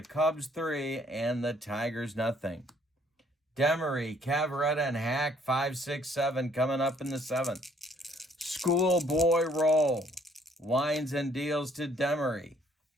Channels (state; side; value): normal; both; correlation 0.63